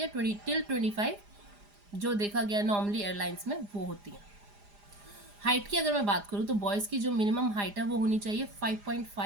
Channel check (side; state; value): left; late; 4.9 ms